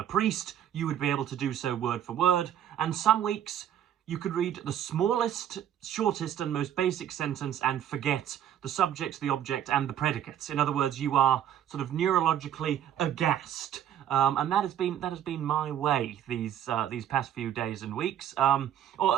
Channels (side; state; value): left; quieter; 10.5 dB